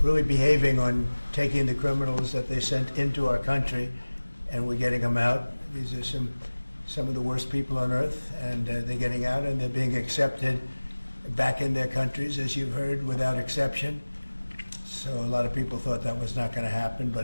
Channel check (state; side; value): inverted; both; correlation -1.00